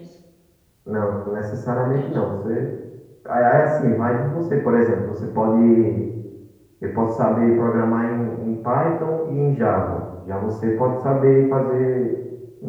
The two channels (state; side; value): identical; both; correlation 1.00